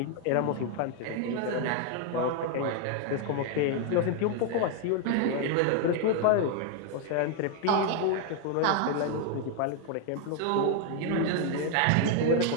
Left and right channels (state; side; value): different; both; correlation 0.01